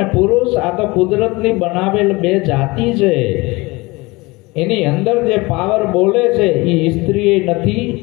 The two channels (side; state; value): right; quieter; 23.3 dB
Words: પુરુષ આ તો કુદરતની બનાવેલ બે જાતિ છે. એની અંદર જે પાવર બોલે છે એ સ્ત્રી નથી